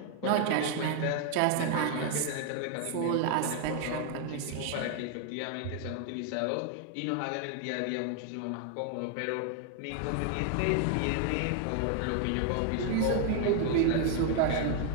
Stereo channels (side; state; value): both; different; correlation 0.00